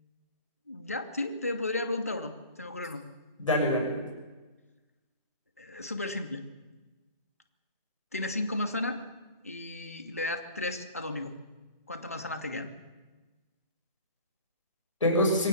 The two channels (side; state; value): both; inverted; correlation -0.43